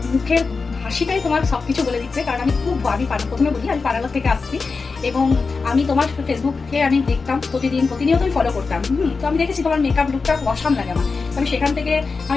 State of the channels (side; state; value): right; quieter; 4.5 dB